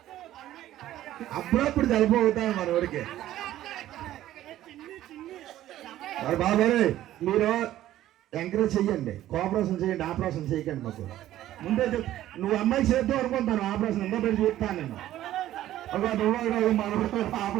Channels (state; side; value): quieter; left; 13.5 dB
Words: అప్పుడప్పుడు చల్లపోతాను మనవాడికి. మరి బాబాయ్ మీరు ఎంకరేజ్ చెయ్యండి, కోఆపరేషన్ చేయండి, ఆపరేషన్ చేయకండి. మాకు ముందే నువ్వు అమ్మాయి చేద్దాం అనుకుంటాను, ఆపరేషన్ ఎంతో పెట్టి చూస్తాను నేను. ఒక నువ్వు మనం